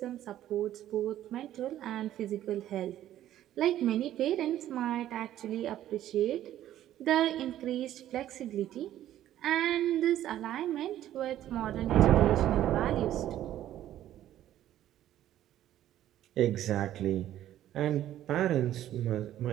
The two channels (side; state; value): left; quieter; 12.5 dB